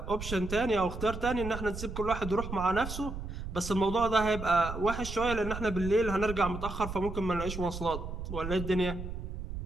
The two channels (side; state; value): right; noise; rumble, 7 dB below the sound